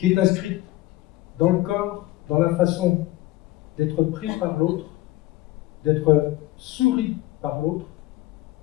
est inscrite dans le corps, dans la façon d'être pris par l'autre, d'être souri par l'autre,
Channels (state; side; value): quieter; right; 17.6 dB